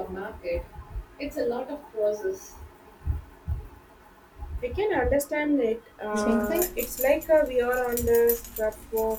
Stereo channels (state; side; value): identical; both; correlation 1.00